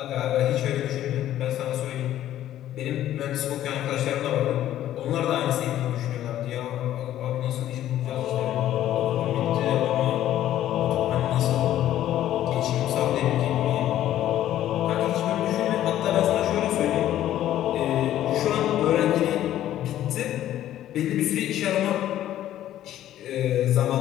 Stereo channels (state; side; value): quieter; right; 12.5 dB